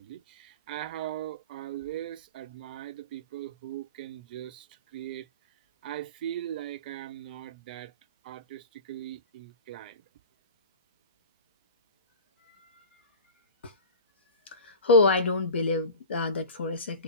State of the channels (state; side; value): inverted; both; correlation -0.33